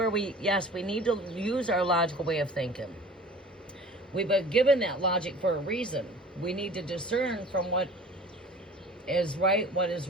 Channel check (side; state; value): both; normal; correlation 0.44